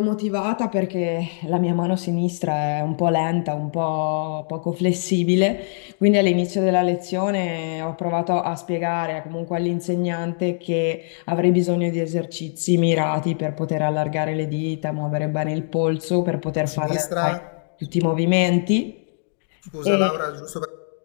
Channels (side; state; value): right; silent; digital silence